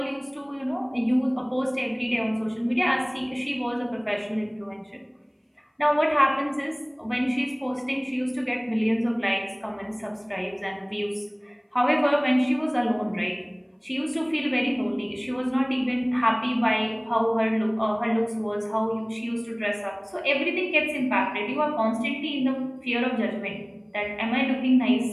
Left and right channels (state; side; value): identical; both; correlation 1.00